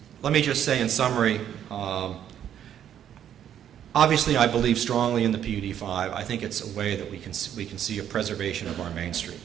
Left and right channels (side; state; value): left; quieter; 10.0 dB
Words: Let me just say in summary, obviously I believe strongly in the PUD-5. I think it's a way that we can see a preservation of our Main Street.